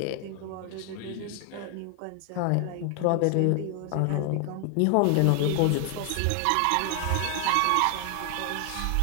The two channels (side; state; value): both; different; correlation 0.00